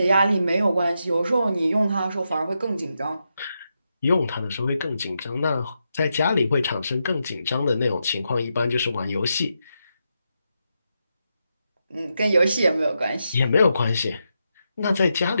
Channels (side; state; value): both; inverted; correlation -0.85